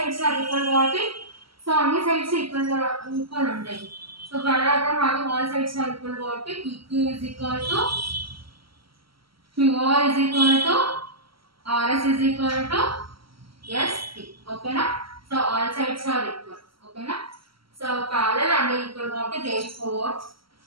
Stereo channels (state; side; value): late; left; 0.75 ms